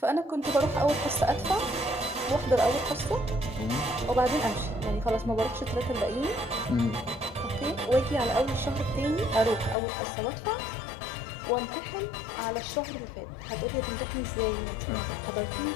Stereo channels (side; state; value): right; drops out; at 9.8 s